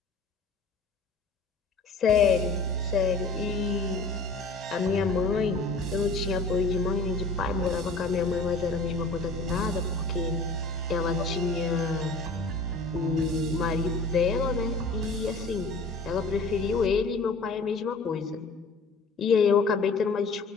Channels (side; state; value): right; quieter; 3.5 dB